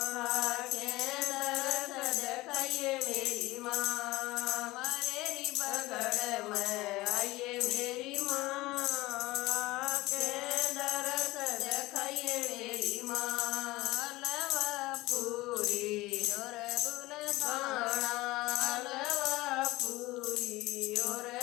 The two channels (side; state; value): right; quieter; 19.4 dB